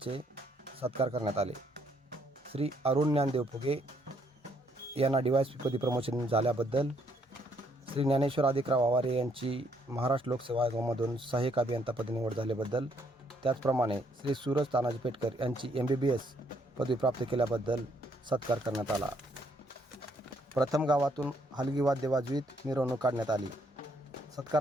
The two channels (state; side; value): normal; both; correlation 0.70